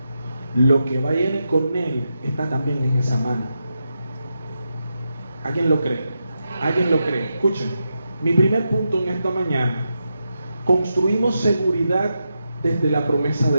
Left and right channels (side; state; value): both; inverted; correlation -0.87